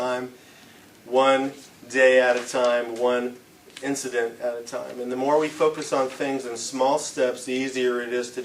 one day at a time, one incident at a time. And the more we focus on things in small steps, the easier it is to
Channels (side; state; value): both; identical; correlation 1.00